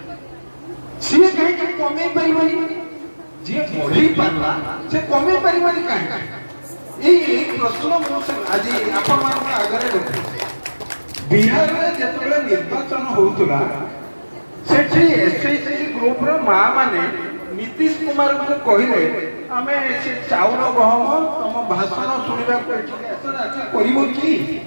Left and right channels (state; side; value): inverted; both; correlation -1.00